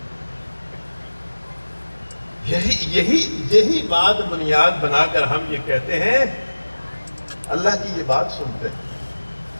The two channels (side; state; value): both; inverted; correlation -1.00